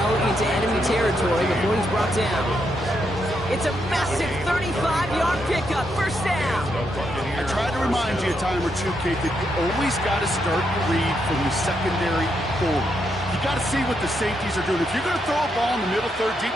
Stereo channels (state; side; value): normal; both; correlation 0.80